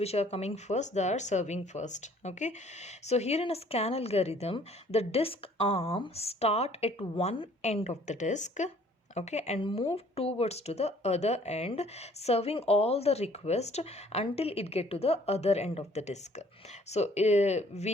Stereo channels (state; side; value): normal; both; correlation 0.58